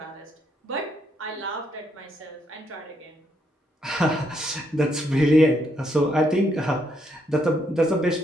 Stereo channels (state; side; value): normal; both; correlation 0.75